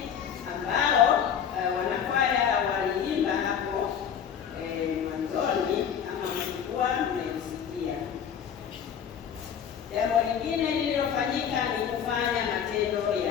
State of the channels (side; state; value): right; quieter; 8.2 dB